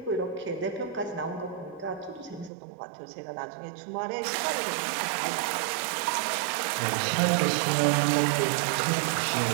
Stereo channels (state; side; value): drops out; left; at 2.5 s